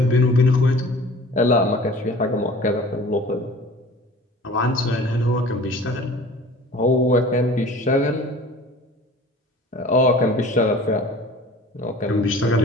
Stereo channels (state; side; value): normal; both; correlation 0.44